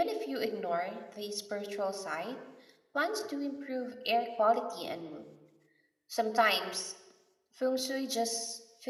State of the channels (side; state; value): both; identical; correlation 1.00